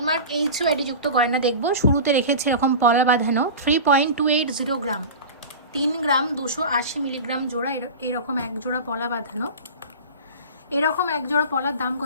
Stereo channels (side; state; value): both; inverted; correlation -0.31